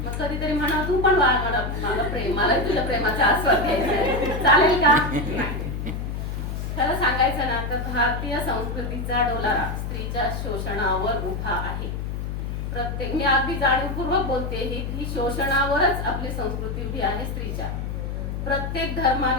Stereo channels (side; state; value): left; noise; hum, 4 dB below the sound